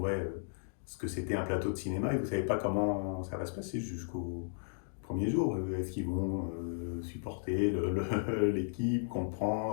ce que c'était un plateau de cinéma, et vous ne savez pas comment ça va se passer jusqu'au premier jour. Est-ce qu'ils vont supporter l'équipe,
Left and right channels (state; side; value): silent; right; digital silence